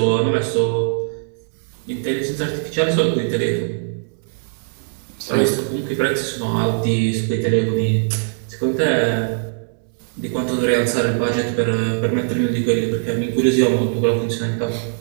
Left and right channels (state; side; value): silent; left; digital silence